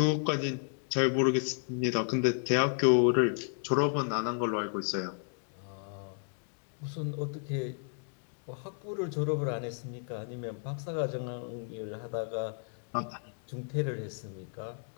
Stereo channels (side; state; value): right; silent; 56 dB below the other